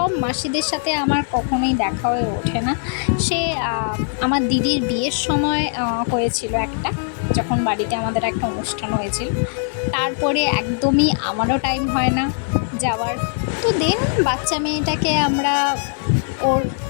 মাসিদের সাথে আমার কখনোই দেখা হয়ে ওঠে না। সে আমার দিদির বিয়ের সময় হয়েছিল একটা, যখন বাড়িতে আমাদের একটা অনুষ্ঠান হয়েছিল, তারপরে একদমই আমারও টাইম হয় না যাওয়ার। তো দেন বাচ্চা মেয়েটাকে আমরা ওর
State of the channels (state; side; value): silent; right; digital silence